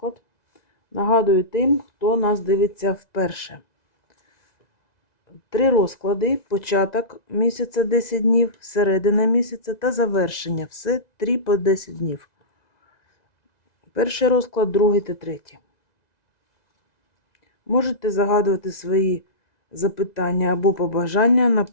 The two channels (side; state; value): right; late; 2.0 ms